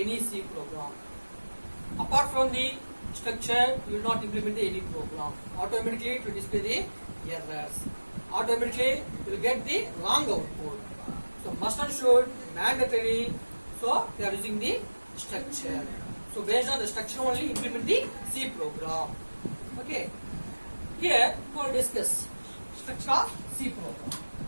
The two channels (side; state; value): both; inverted; correlation -1.00